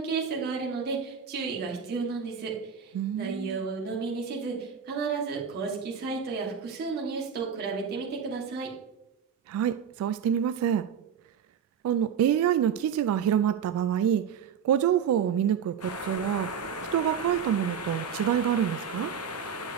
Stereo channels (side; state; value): left; quieter; 7.5 dB